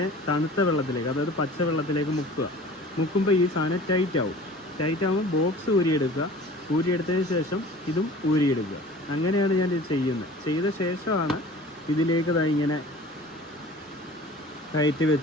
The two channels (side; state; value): both; normal; correlation 0.43